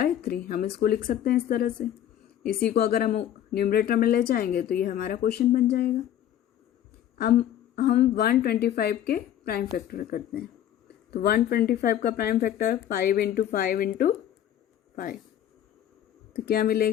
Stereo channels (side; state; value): right; quieter; 10.9 dB